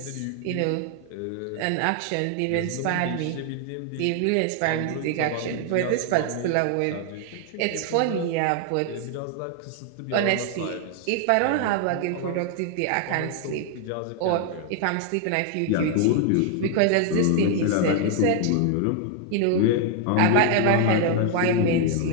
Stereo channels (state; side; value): different; both; correlation 0.00